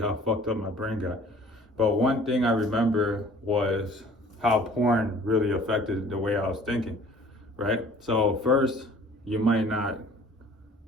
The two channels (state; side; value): normal; both; correlation 0.51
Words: fucked up my brain got. But one thing I remember was how porn really affected the way I was thinking, right? So first, you might not